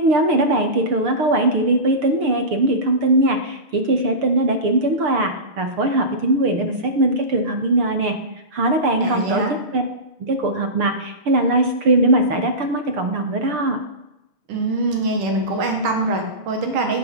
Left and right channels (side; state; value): left; late; 6.7 ms